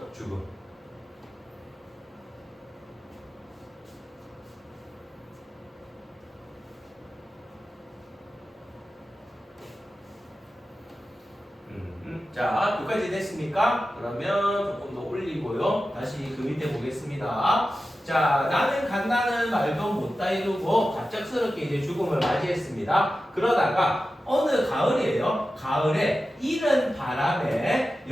죽음. 자, 여기까지 됐습니까? 그러면 조금 더 올리고요. 다시 그 밑에 보겠습니다. 자, 나는 간다는 말도 못다 이루고 갑작스럽게 이제 죽음을 맞이했습니다. 그러다가 어느 가을이에요. 가을에 이른 바람에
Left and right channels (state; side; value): normal; both; correlation 0.93